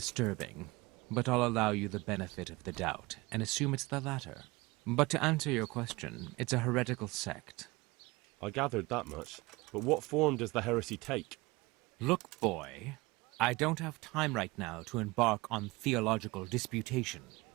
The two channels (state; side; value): quieter; left; 23.0 dB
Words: but I'll allow you the benefit of the doubt, and assume it's the latter. But to answer your question, it's a heretical sect. I gathered that much. But what form does the heresy take? Look, boy, I don't have time right now to embark on theological disputation.